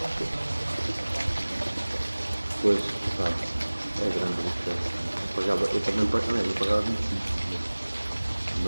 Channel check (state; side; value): inverted; both; correlation -1.00